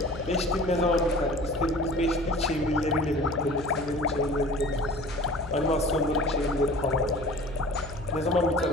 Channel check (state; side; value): noise; left; hum, 15 dB below the sound